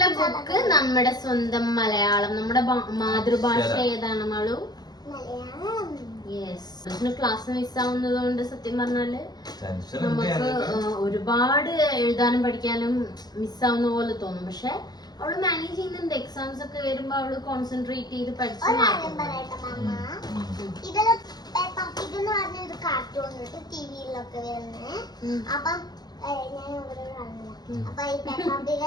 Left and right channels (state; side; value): late; right; 0.19 ms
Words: ബുക്ക് നമ്മുടെ സ്വന്തം മലയാളം. നമ്മുടെ മാതൃഭാഷ ഏതാണ് മാളു? യെസ്. ക്ലാസ് മിസ്സാവുന്നത് കൊണ്ട് സത്യം പറഞ്ഞാല് നമുക്ക് ഒരുപാട് എഴുതാനും പഠിക്കാനും മിസ്സാവുന്ന പോലെ തോന്നും. പക്ഷെ അവള് മാനേജ് ചെയ്യുന്നുണ്ട്. എക്സാംസ് ഒക്കെ വരുമ്പോ അവള് കോൺസെൻട്രേറ്റ് ചെയ്ത് പഠിച്ചു. അപ്പൊ ഈ പെപ്പാ പിഗ്